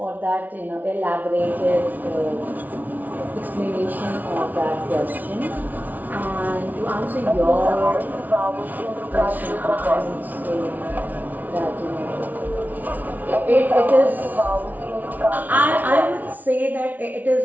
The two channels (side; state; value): left; late; 0.078 ms